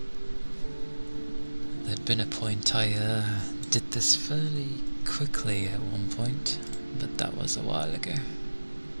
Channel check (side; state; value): both; inverted; correlation -1.00